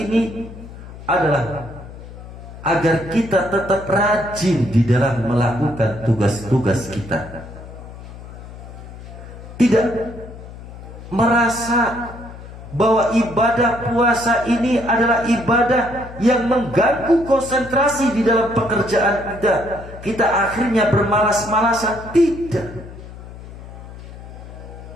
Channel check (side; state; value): left; noise; hum, 15 dB below the sound